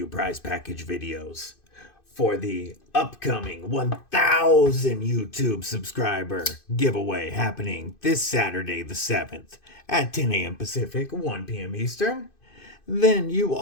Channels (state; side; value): late; right; 2.5 ms